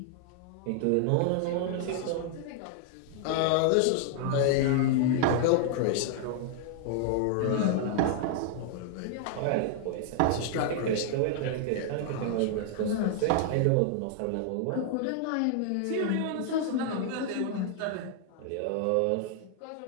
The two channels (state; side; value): different; both; correlation 0.00